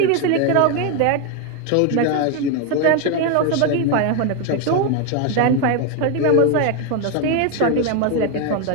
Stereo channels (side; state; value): both; different; correlation 0.01